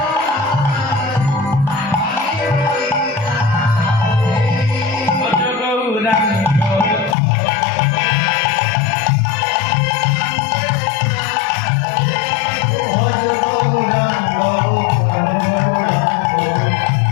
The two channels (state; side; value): drops out; right; at 7.2 s